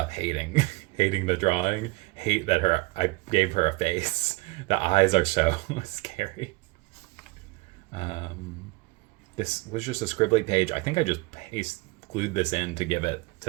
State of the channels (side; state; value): left; quieter; 23.8 dB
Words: hating the drawing. Hate that I gave her a face. The eyes are so scary. This was just a scribbly page. I think I just glued this in to